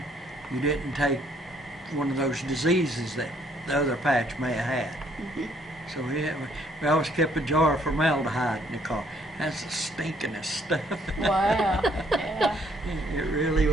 you didn't take one of those diseases that the other patch may have had. So we always kept a jar of formaldehyde in the car. That's the stinkingest stuff. Wow. Yeah. It really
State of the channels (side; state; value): both; normal; correlation 0.65